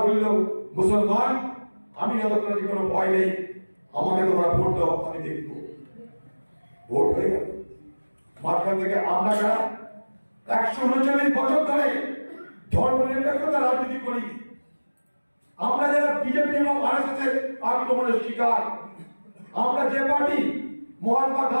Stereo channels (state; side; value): inverted; both; correlation -1.00